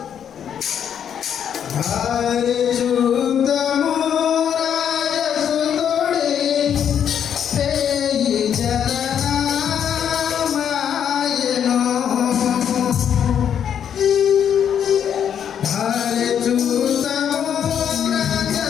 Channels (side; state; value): right; quieter; 8.7 dB